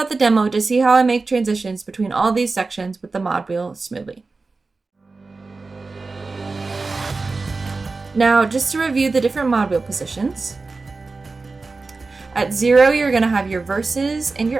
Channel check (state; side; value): quieter; left; 3.9 dB